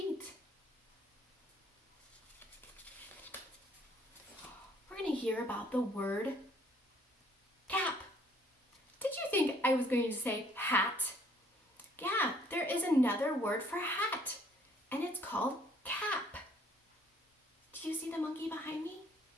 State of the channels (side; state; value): both; normal; correlation 0.61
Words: We're going to hear about the word cap. Did you think I was going to say hat? Yeah, there is another word for hat, and it's called cap. Do you see the monkey behind me?